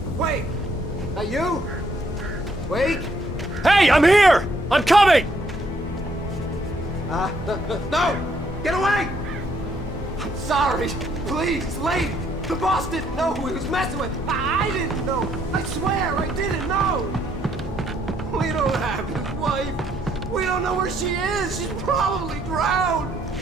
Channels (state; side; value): normal; both; correlation 0.70